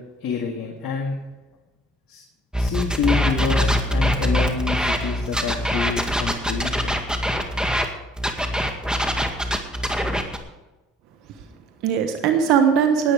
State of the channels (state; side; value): normal; both; correlation 0.59